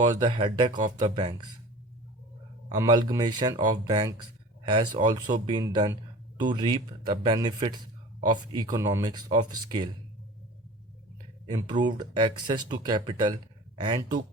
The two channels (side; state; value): both; normal; correlation 0.40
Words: the headache of the banks. Amalgamation of banks has also been done to reap the benefits of economics of scale, improved access to capital, and to